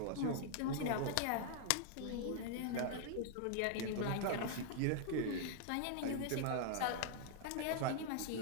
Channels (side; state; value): both; different; correlation 0.00